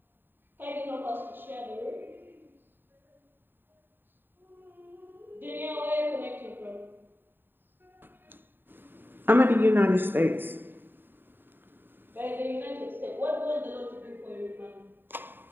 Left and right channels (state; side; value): late; left; 0.095 ms